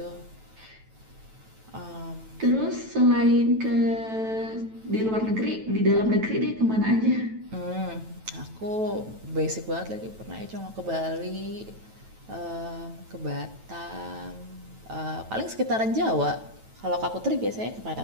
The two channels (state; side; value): late; left; 9.1 ms